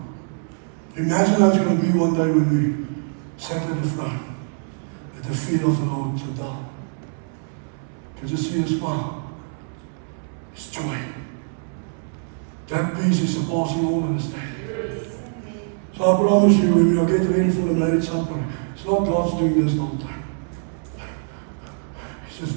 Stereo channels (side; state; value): left; silent; 63 dB below the other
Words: Imagine how it's going to be one day when we sat at the throne, at the feet of the Lord to die. Can you see a smile? It's joy. That peace is surpassing all understanding. So I promise you, when we are getting ready for the marriage supper, it's not God's doing this all the time. He's just